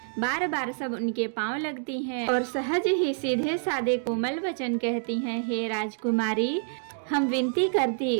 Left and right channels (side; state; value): left; silent; digital silence